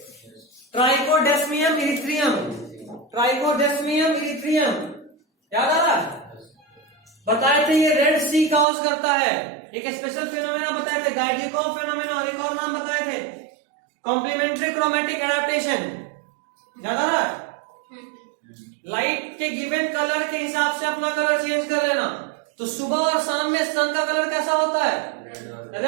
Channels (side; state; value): left; drops out; at 8.7 s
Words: ट्राइकोडेस्मियम इरिथ्रियम। ट्राइकोडेस्मियम इरिथ्रियम याद आ रहा है? बताए थे ये रेड सी कॉज करता है। एक स्पेशल फिनोमेना बताए थे, गाइडिकोव फिनोमेना, और एक और नाम बताए थे, कॉम्प्लीमेंट्री क्रोमेटिक एडाप्टेशन। याद आ रहा है? लाइट के गिवन कलर के हिसाब से अपना कलर चेंज कर लेना। तो सुबह और शाम में सन का कलर कैसा होता है?